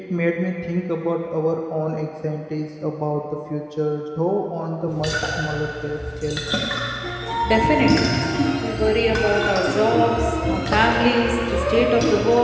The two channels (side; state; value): both; identical; correlation 1.00